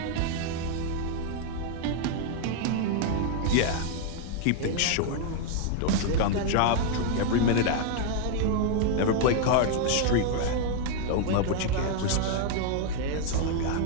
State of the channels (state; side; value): different; both; correlation 0.00